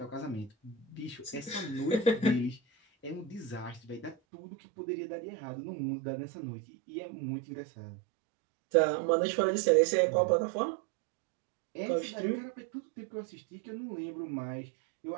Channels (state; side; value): drops out; left; at 4.2 s